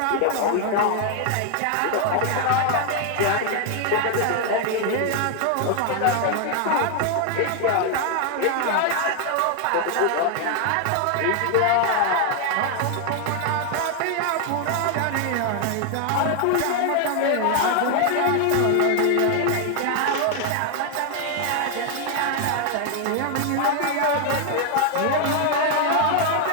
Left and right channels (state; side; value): different; both; correlation 0.00